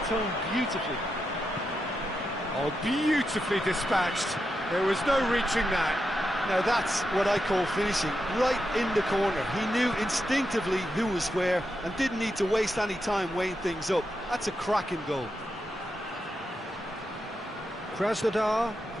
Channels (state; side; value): normal; both; correlation 0.86